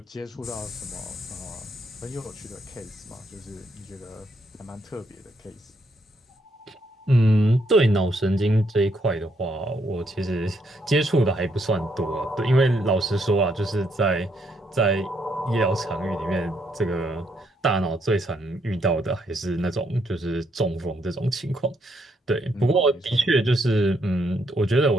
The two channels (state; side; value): normal; both; correlation 0.74